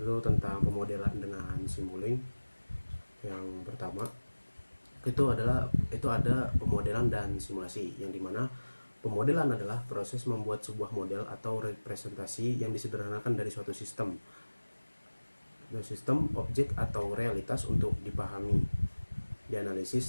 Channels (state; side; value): inverted; both; correlation -1.00